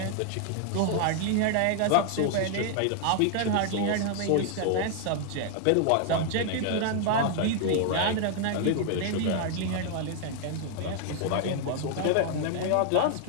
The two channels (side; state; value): both; different; correlation 0.00